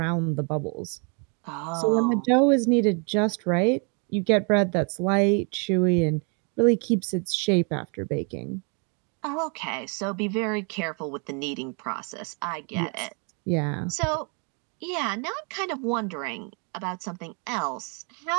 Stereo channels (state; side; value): quieter; left; 36.4 dB